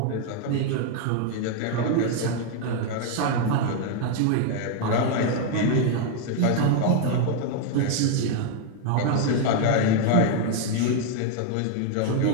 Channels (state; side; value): different; both; correlation 0.00